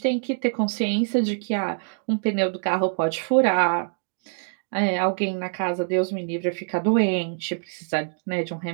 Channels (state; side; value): silent; left; digital silence